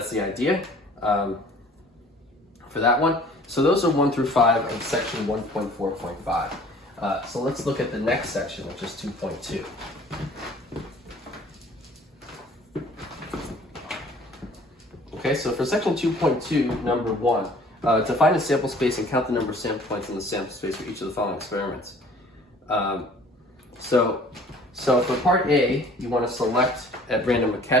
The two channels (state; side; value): normal; both; correlation 0.52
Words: the idea for that one. So those are 1 through 5 of section 1.4.5. So let's look at the next section, which is 2.2. Okay, so for section 2.2, number 1, to find a sample space and count the number of sample points in the sample space for each of the following experiments. So for part A, you want to select at random a